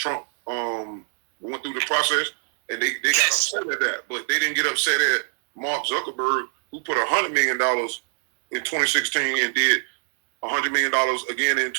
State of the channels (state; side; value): silent; left; digital silence